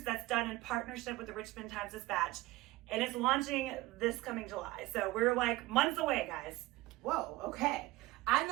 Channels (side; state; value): left; quieter; 18.9 dB